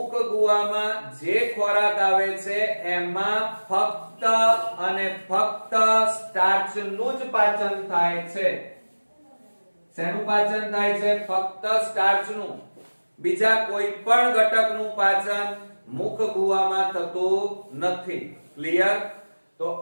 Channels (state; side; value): inverted; both; correlation -1.00